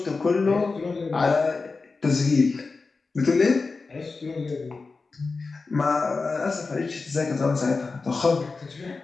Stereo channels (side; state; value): right; quieter; 4.1 dB